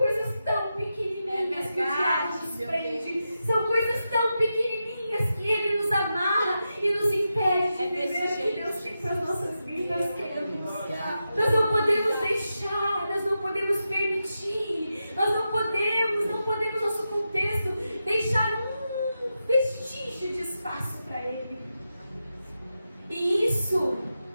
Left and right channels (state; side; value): inverted; both; correlation -0.89